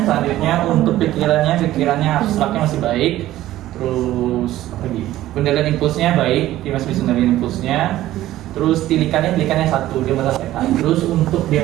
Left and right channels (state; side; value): quieter; left; 14.6 dB